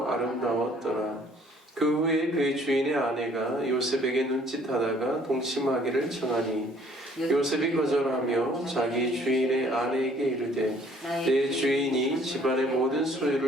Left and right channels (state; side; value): normal; both; correlation 0.59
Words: 아름다웠더라. 그 후에 그의 주인의 아내가 요셉에게 눈짓하다가 동침하기를 청하니 요셉이 거절하며 자기 주인의 아내에게 이르되 내 주인이 집안의 모든